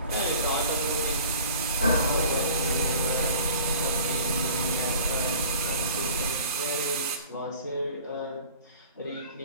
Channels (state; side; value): inverted; both; correlation -0.46